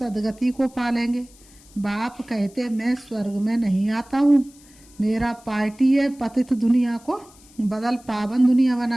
को पालेंगे। बाप कहते मैं स्वर्ग में नहीं आता हूँ, मेरा पार्टी है पतित दुनिया को बदल पावन दुनिया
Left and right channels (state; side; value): noise; left; hiss, 26 dB below the sound